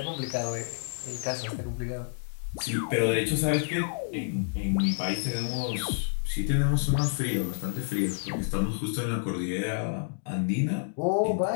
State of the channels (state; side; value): silent; right; digital silence